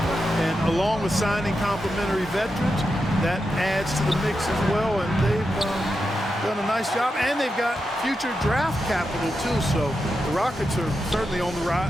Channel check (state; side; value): normal; both; correlation 0.88